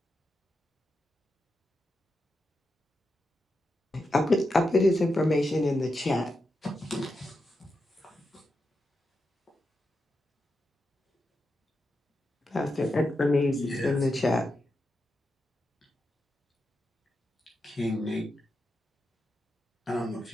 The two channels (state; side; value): normal; both; correlation 0.87